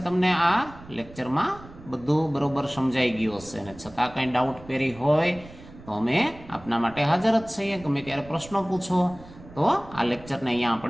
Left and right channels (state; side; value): noise; right; rumble, 19 dB below the sound